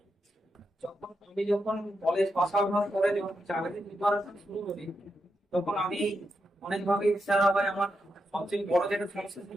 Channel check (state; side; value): normal; both; correlation 0.85